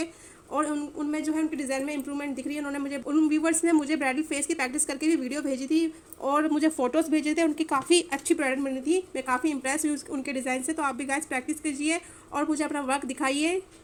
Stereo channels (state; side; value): identical; both; correlation 1.00